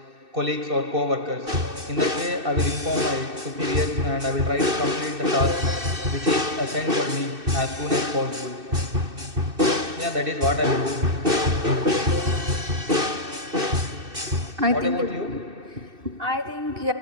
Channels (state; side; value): late; left; 2.6 ms